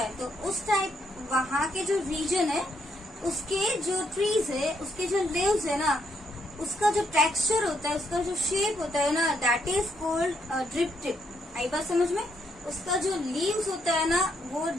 तो उस टाइप वहाँ के जो रीजन है उसके जो ट्रीज है, उसके जो लीव्स है ना, उसका जो टेक्सचर होता है, उसका जो शेप होता है ना, that is called drip tip. आई बात समझ में? उसका जो लीव्स होता है ना वो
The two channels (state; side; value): normal; both; correlation 0.75